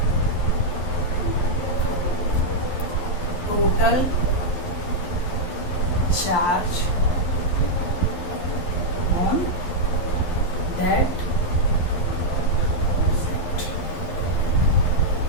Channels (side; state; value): right; late; 11 ms